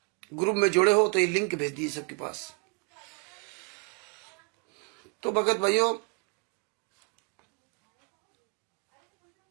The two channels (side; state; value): left; quieter; 32.5 dB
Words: ग्रुप में जुड़े हो तो ये लिंक भेज दीजिए सबके पास। तो भगत भाइयों,